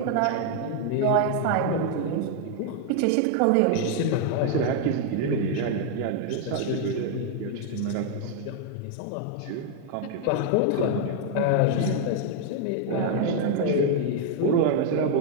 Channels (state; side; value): different; both; correlation 0.00